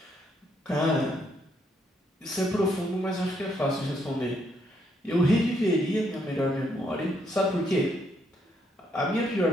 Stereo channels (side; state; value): both; normal; correlation 0.73